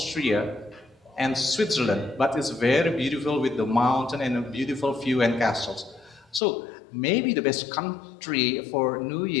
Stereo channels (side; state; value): right; drops out; at 6.4 s